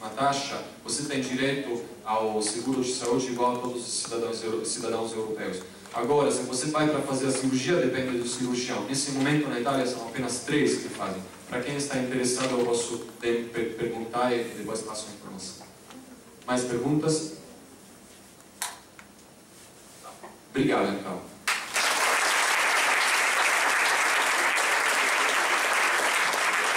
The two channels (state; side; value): identical; both; correlation 1.00